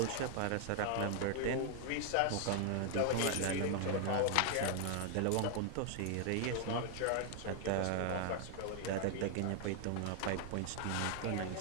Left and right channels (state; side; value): different; both; correlation 0.00